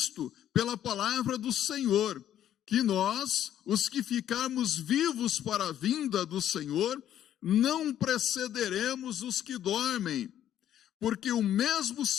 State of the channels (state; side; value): quieter; right; 11.1 dB